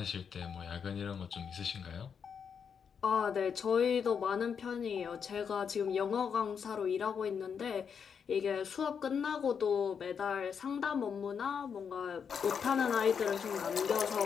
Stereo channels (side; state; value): right; quieter; 6.8 dB